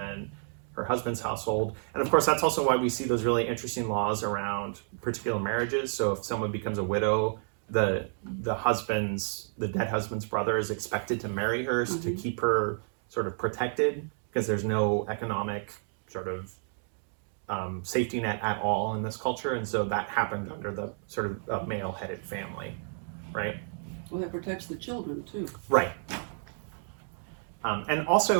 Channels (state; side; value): silent; left; 57 dB below the other